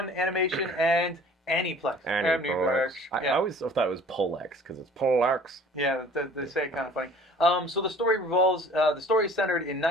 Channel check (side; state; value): both; normal; correlation 0.49